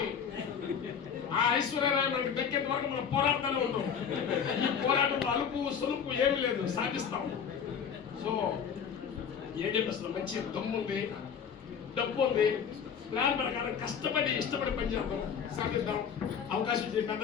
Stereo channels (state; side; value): quieter; right; 7.3 dB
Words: ఆ ఐశ్వర్యరాయ్ మనకి దక్కేంత వరకు మనం పోరాడుతూనే ఉంటాం. ఈ పోరాటంలో అలుపు సొలుపు ఏమీ లేదు, సాధిస్తాం. సో ఏం చెప్పేస్తున్నాం, మంచి దమ్ము ఉంది, డబ్బు ఉంది, ప్లాన్ ప్రకారం కష్టపడి ఇష్టపడి పనిచేద్దాం, సాధిద్దాం. అవకాశం ఇచ్చే